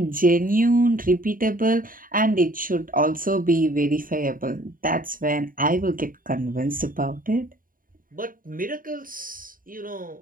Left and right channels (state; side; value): late; left; 0.40 ms